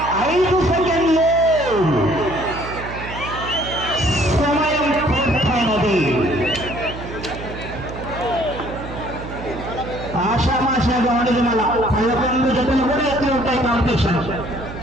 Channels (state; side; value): noise; right; hum, 10 dB below the sound